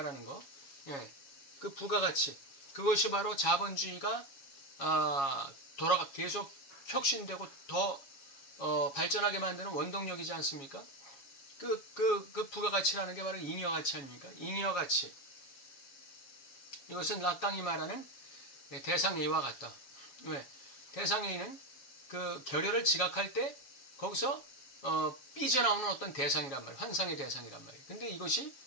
거, 예, 그 부가가치, 그것이 바로 자본주의가 계속 혁신되고 더 발전하게 만드는 원동력이지 않습니까? 그 부가가치라는 게 바로 잉여가치 아닙니까? 잉여가치. 이것은 락강이 말하는 대상A와 같다. 왜? 대상A는 그 결여를 지각할 때 거기서 삐져나오는 어떤 대상이란 말이에요. 환상의 대상이란 말이에요. 근데 이것이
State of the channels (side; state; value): right; late; 7.3 ms